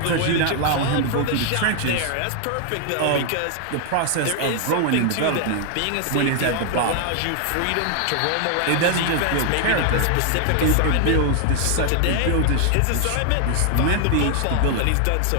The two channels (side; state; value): both; different; correlation 0.00